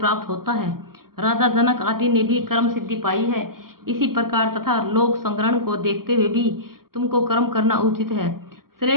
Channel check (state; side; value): late; left; 0.93 ms